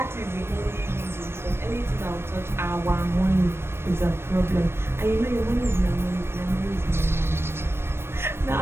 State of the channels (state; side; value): late; left; 0.12 ms